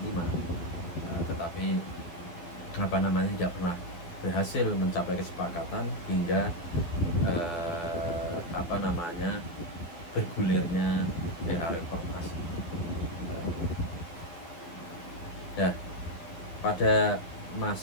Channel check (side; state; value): right; late; 12 ms